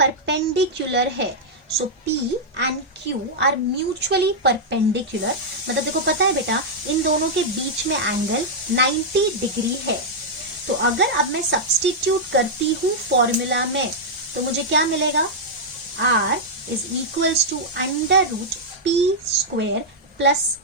है। So P and Q are mutually perpendicular. मतलब देखो पता है बेटा इन दोनों के बीच में एंगल 90 डिग्री है। तो अगर अब मैं सब्स्टिट्यूट करती हूँ फॉर्मूला में तो मुझे क्या मिलेगा, R is equals to under root P square plus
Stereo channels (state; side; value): normal; both; correlation -0.05